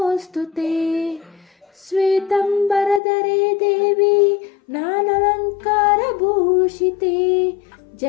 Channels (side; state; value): right; drops out; at 3.0 s